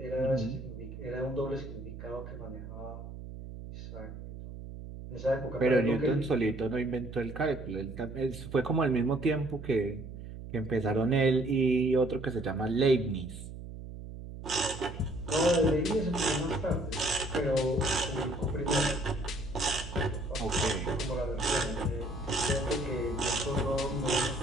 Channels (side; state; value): right; noise; hum, 11 dB below the sound